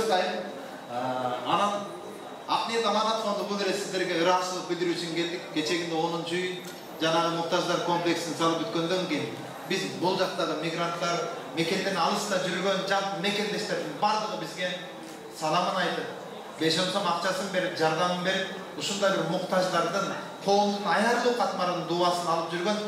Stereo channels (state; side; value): identical; both; correlation 1.00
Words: да. Анан Акниет Аманат фонду бул эле сиздерге ыраазычылык билдирүү үчүн келдик. Кечегинде 10-үй жанагы муктаждар комплексин салып бүткөндөн кийин biz bol жактагы мигранттар, Мекенден алыста жүргөн жалпы мекендештердин бардыгы бизге саламын айтып, 5 сом акчасын берип, жардамын берип, ушундай бир муктаждардын коомдун аярлуу катмарынын дубасын алып жүргөн